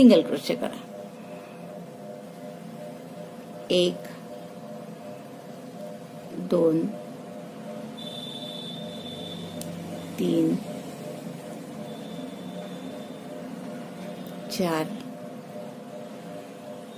क्रोशे करा. 1, 2, 3, 4,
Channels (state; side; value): identical; both; correlation 1.00